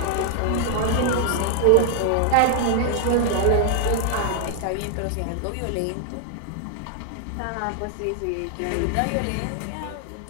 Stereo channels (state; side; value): different; both; correlation 0.00